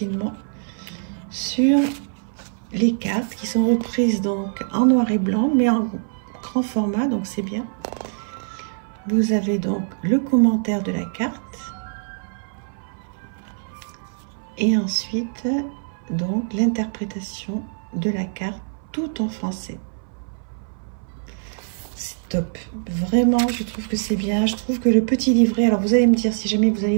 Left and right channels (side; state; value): left; silent; 59 dB below the other